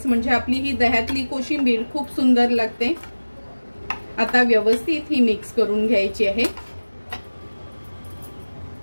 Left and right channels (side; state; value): both; inverted; correlation -1.00